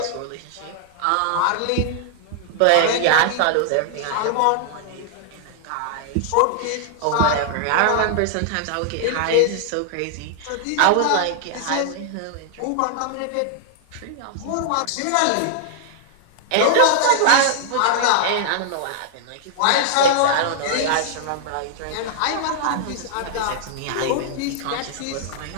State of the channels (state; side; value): different; both; correlation -0.01